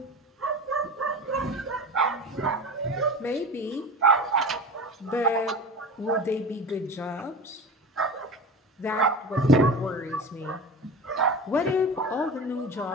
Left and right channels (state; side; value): normal; both; correlation 0.31